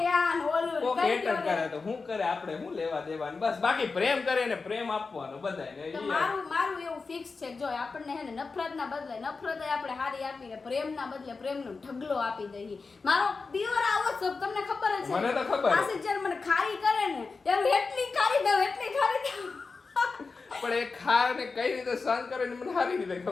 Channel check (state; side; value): quieter; right; 4.3 dB